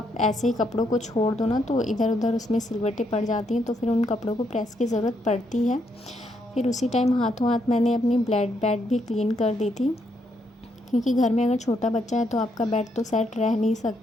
ऐसे ही कपड़ों को छोड़ दो ना, तो इधर उधर उसमें सिलवटें पड़ जाती हैं, तो फिर उन कपड़ों को प्रेस की ज़रूरत पड़ती है। फिर उसी टाइम हाथों हाथ मैंने अपनी बेड भी क्लीन कर दी थी, क्योंकि घर में अगर छोटा बच्चा है तो आपका बेड तो सेट रह नहीं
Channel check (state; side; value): normal; both; correlation 0.76